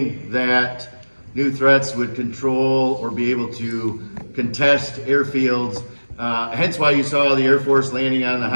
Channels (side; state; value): both; inverted; correlation -1.00